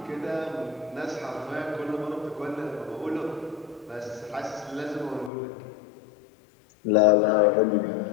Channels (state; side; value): drops out; right; at 5.3 s